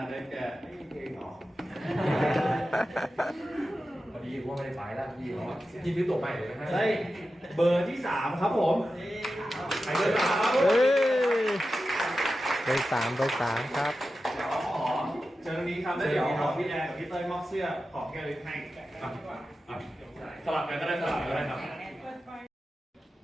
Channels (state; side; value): normal; both; correlation 0.92